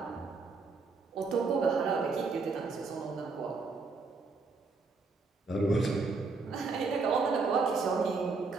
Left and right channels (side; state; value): left; quieter; 4.2 dB